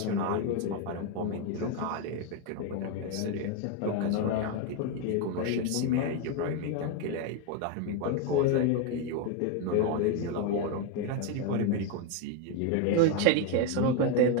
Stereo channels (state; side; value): different; both; correlation 0.01